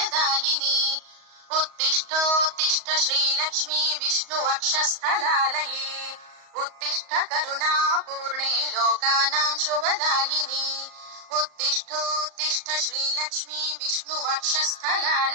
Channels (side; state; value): left; late; 38 ms